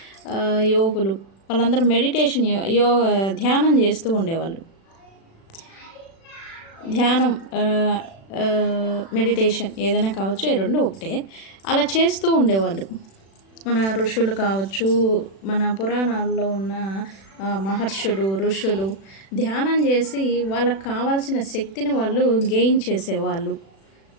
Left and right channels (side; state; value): right; late; 36 ms